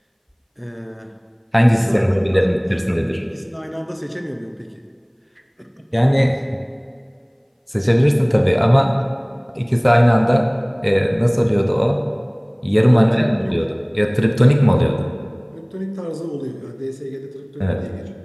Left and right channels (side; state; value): both; identical; correlation 1.00